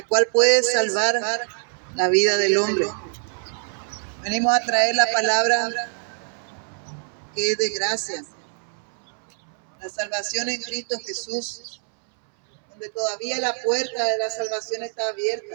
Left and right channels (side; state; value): left; silent; 62 dB below the other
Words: cual puede salvar la vida del hombre. Venimos a traer la palabra que es de gracia, la salvación en Cristo Jesús, donde todavía la puerta de la salvación está